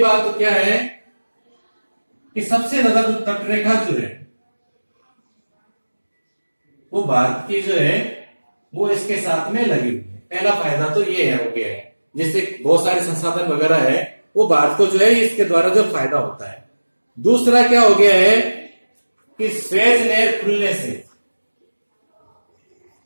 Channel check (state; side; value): inverted; both; correlation -1.00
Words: तो क्या है कि सबसे ज्यादा जो तटरेखा जो है वो भारत की जो है वो इसके साथ में लगी हुई है। पहला फायदा तो ये है, हो गया है, जिससे बहुत सारे संसाधन वगैरह है वो भारत को जो है इसके द्वारा जो फायदा होता है। दूसरा क्या हो गया है कि स्वेज नहर खुलने से